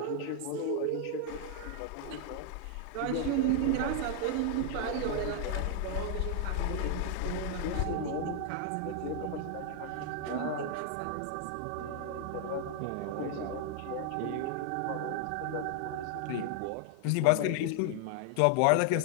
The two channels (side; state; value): both; different; correlation 0.00